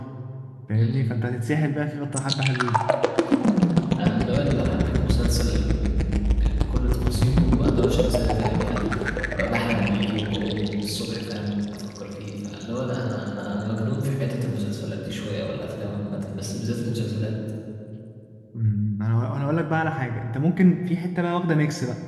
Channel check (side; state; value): both; identical; correlation 1.00